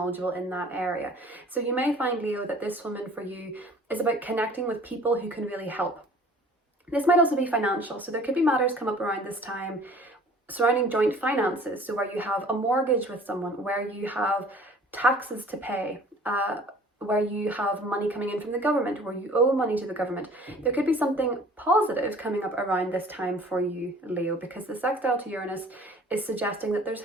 in that area. So you may find, Leo, that this woman for you is about connecting with people who can really help. This might also be financial. So there could be matters come up around this time surrounding joint finances. So where you have a mortgage with someone, where you have taxes to pay, where you have money coming in from the government, where you owe money to the government. There could be something positive coming up around this time for you, Leo, because the sextile to Uranus is suggesting that there's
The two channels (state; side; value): normal; both; correlation 0.50